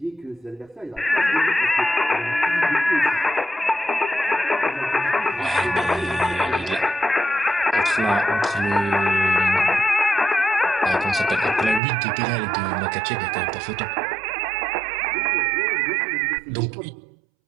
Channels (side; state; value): left; drops out; at 11.8 s